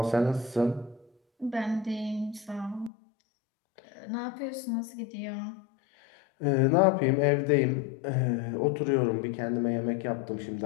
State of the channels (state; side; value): drops out; right; at 2.9 s